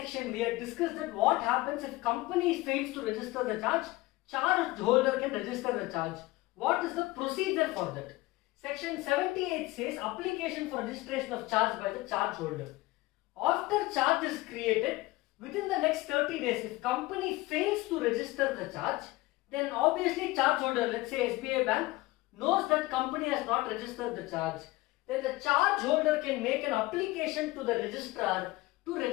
we had discussed that what happens if company fails to register the charge, charge holder can register the charge. What is the procedure for that? Section 78 says application for registration of charge by the charge holder. After charge is created, within the next 30 days, if company fails to register the charge, then obviously charge holder, let's say SBI Bank, knows that company has not registered the charge, then the charge holder can make an application to the registrar to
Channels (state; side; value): quieter; right; 20.1 dB